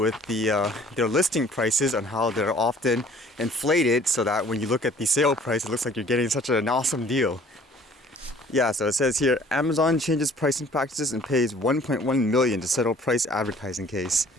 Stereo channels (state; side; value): normal; both; correlation 0.53